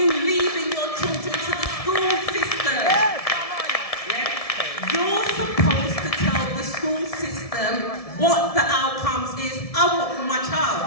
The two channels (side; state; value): right; late; 1.7 ms